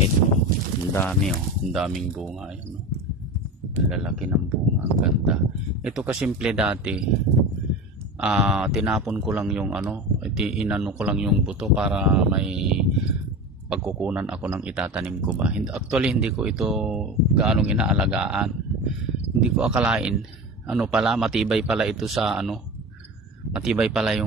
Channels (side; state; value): both; normal; correlation 0.29